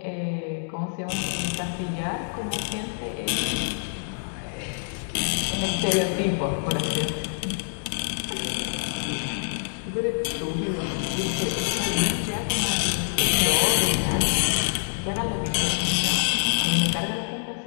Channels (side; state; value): right; silent; digital silence